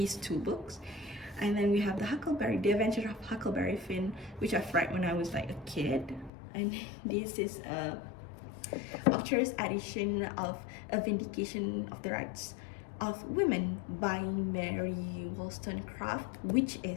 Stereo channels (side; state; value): right; drops out; at 6.3 s